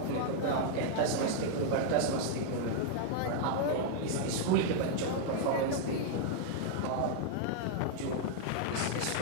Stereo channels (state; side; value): different; both; correlation 0.00